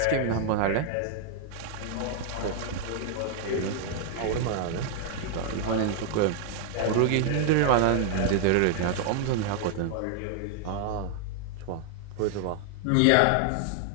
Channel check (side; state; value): both; different; correlation 0.00